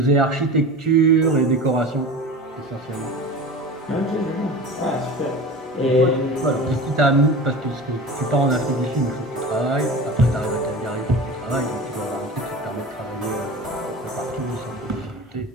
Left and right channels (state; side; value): normal; both; correlation 0.34